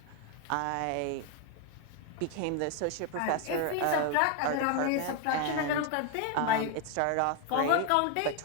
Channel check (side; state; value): both; different; correlation 0.01